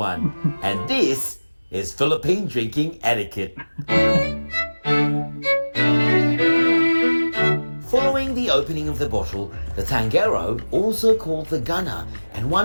and this is Philippine Drinking Etiquette. Following the opening of the bottle, the tangero, also called the gunner, and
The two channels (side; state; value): both; inverted; correlation -1.00